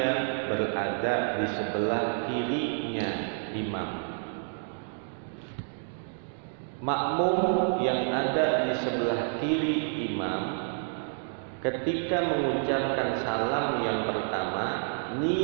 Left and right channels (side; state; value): left; silent; digital silence